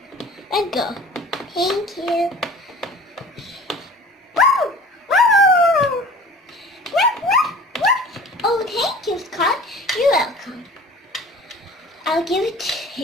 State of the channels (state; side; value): normal; both; correlation 0.43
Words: Let's go. Thank you. Oh, thank you, Scott. You're welcome. I'll give it